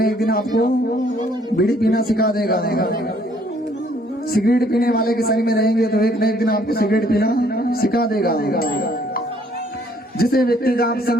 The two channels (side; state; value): both; normal; correlation 0.63